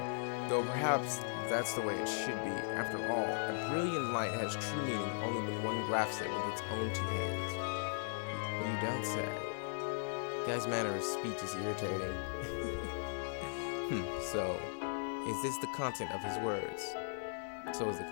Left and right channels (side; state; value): right; silent; 52 dB below the other